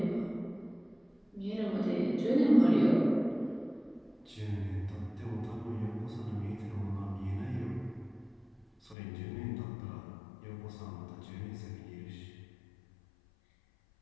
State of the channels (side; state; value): right; drops out; at 9.0 s